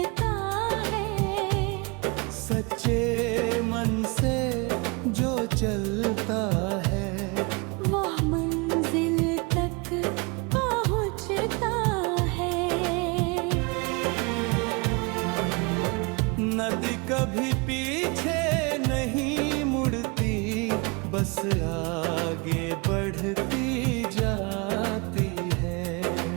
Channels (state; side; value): quieter; left; 29.5 dB